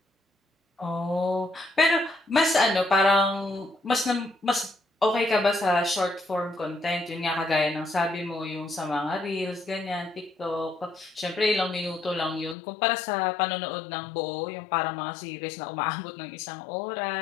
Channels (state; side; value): drops out; right; at 12.6 s